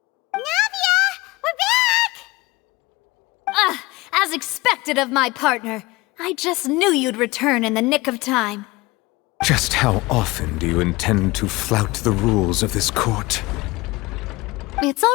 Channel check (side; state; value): right; quieter; 21.8 dB